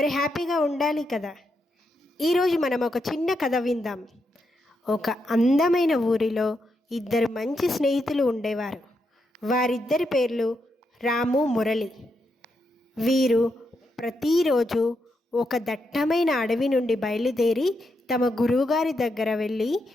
హ్యాపీగా ఉండాలి కదా. ఈరోజు మనం ఒక చిన్న కథ విందాం. ఒక అందమైన ఊరిలో ఇద్దరు మంచి స్నేహితులు ఉండేవారు. వారిద్దరి పేర్లు రాము, మురళి. వీరు ప్రతిరోజు ఒక దట్టమైన అడవి నుండి బయలుదేరి తమ గురువుగారి దగ్గర వెళ్ళి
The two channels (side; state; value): both; normal; correlation 0.82